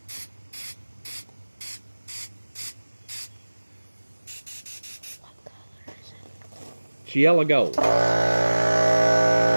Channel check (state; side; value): inverted; both; correlation -1.00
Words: It's yellow gold.